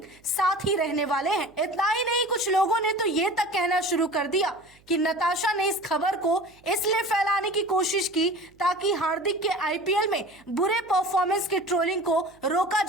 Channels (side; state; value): right; noise; hum, 30 dB below the sound